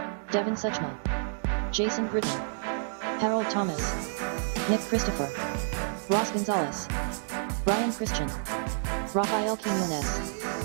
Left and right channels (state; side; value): silent; left; digital silence